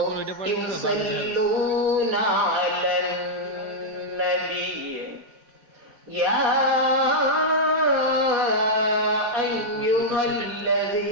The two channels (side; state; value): left; late; 4.1 ms